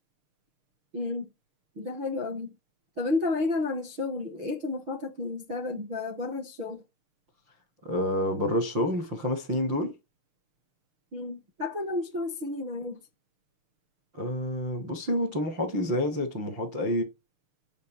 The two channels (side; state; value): left; late; 6.6 ms